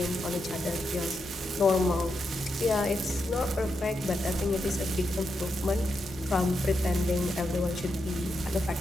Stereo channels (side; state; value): both; normal; correlation 0.85